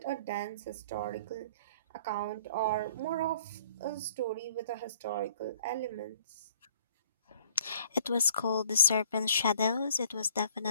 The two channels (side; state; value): both; inverted; correlation -0.55